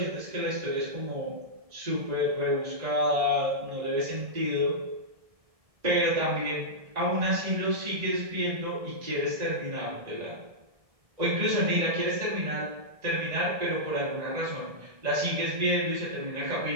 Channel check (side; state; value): left; late; 1.7 ms